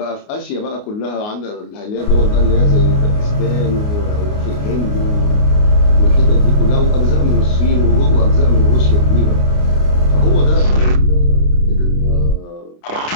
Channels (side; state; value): right; late; 29 ms